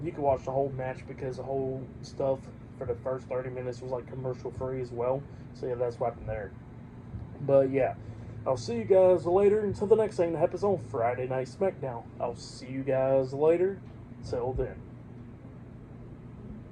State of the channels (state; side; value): identical; both; correlation 1.00